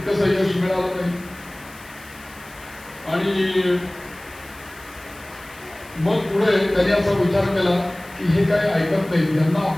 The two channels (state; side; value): noise; left; hiss, 22 dB below the sound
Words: यश मिळालं नाही. आणि मग पुढे त्यांनी असा विचार केला की हे काही ऐकत नाही, यांना